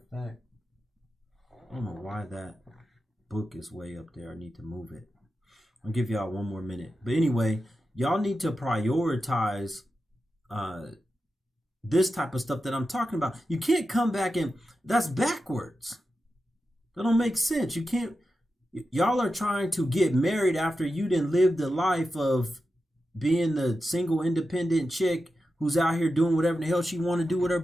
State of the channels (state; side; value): normal; both; correlation 0.90